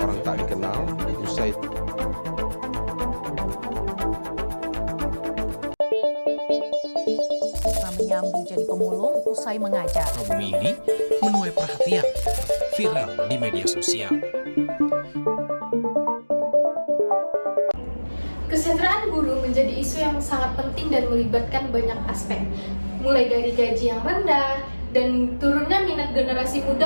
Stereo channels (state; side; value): inverted; both; correlation -1.00